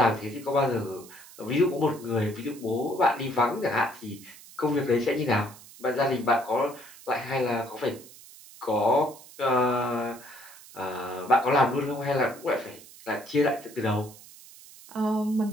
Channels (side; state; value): right; noise; hiss, 20 dB below the sound